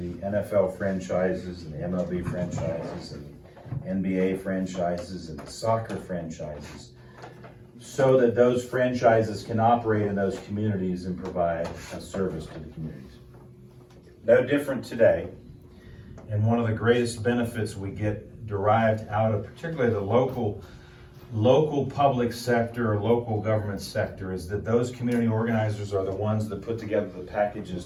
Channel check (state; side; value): identical; both; correlation 1.00